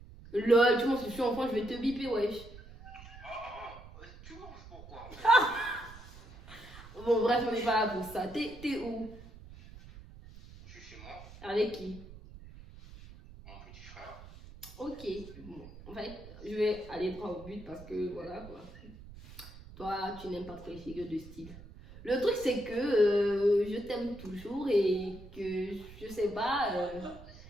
Lol, tu m'en suis enfant, je vais te biper, wesh. Tu vois pourquoi? Bon, bref, on n'est pas là pour ça. T'es où? Je suis chez moi, Avec qui? mon petit frère. Ok. Bon, en fait, je vais aller droit au but parce que voilà quoi. Toi, tu n'aimes pas trop les figures de style. Le truc, c'est que je t'aime toujours et que je sais pas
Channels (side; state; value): right; noise; rumble, 17 dB below the sound